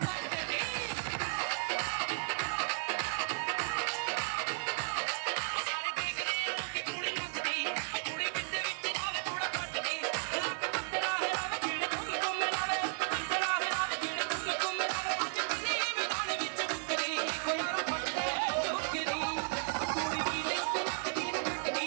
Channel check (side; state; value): left; silent; digital silence